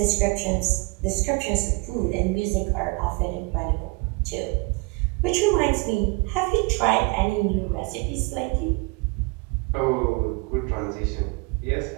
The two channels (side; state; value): left; quieter; 27.9 dB